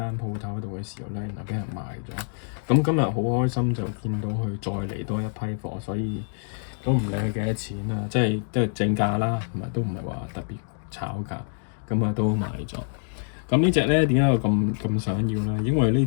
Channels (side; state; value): right; silent; 61 dB below the other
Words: 鋪頭度嘅時候咧，原來俾人賣咗。咁今日好開心就見到佢再嚟多一批貨，所以都唔理佢幾多錢啦，即係正價啦，同埋都唔係話特別炒價，咁啊都買咗。咁呢隻咧點解我咁想要咧？因為呢